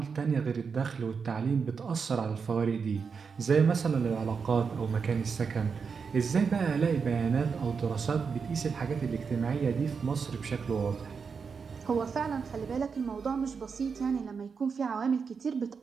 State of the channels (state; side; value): quieter; left; 5.7 dB